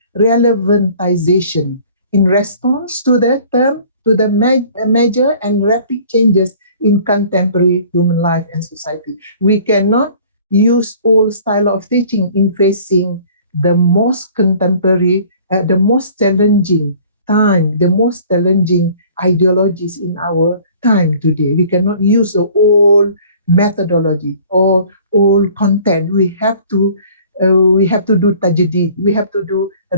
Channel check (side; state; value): both; inverted; correlation -0.51